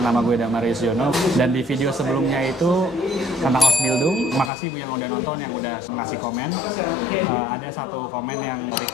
Nama gue Damarius Jono. Dan di video sebelumnya itu tentang Ausbildung. Makasih yang udah nonton, yang udah ngasih komen. Ada satu komen yang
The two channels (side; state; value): right; drops out; at 4.5 s